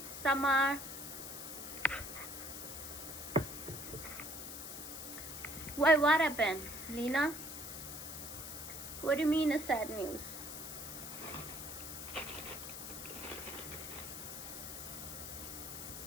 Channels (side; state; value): left; noise; hiss, 8 dB below the sound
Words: Summer. Why? What happened, Lena? What do you mean a sad news?